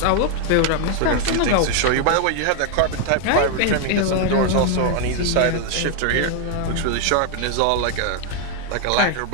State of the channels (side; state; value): both; different; correlation 0.01